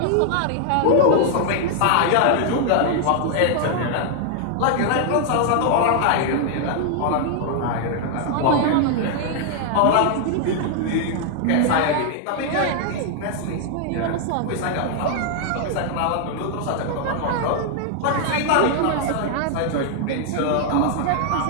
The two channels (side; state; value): both; different; correlation 0.00